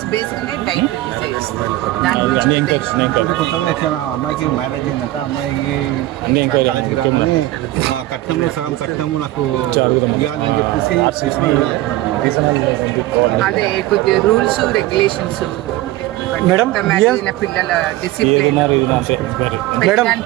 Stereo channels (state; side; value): quieter; left; 16.5 dB